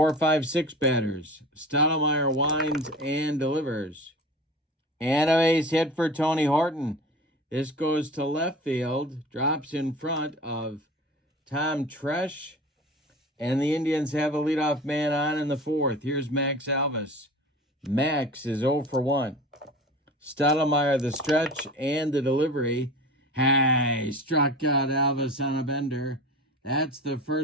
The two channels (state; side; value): normal; both; correlation 0.36